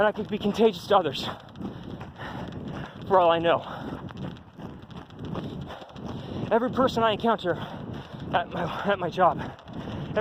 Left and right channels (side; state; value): both; identical; correlation 1.00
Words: I could be contagious to others. For all I know. Every person I encounter at my job,